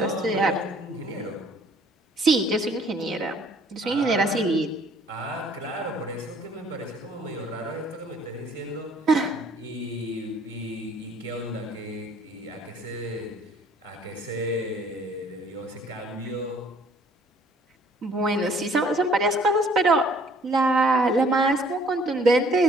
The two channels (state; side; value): normal; both; correlation 0.59